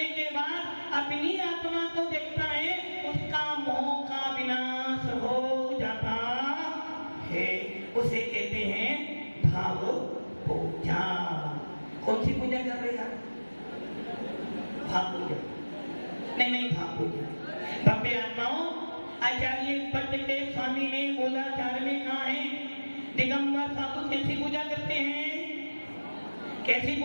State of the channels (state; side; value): inverted; both; correlation -1.00